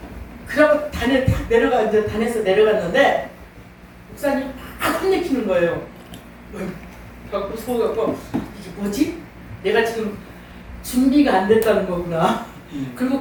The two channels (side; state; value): both; identical; correlation 1.00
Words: 단에 탁 내려가, 이제 단에서 내려갔는데 목사님 막 혼내키는 거예요. 그래갖고 속아갖고 이게 뭐지? 내가 지금 준비가 안 됐다는 거구나. 그리고